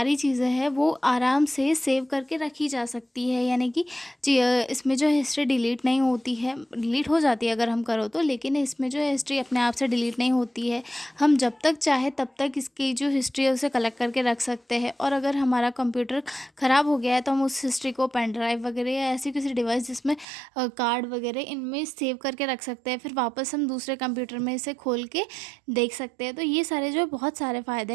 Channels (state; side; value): drops out; left; at 20.2 s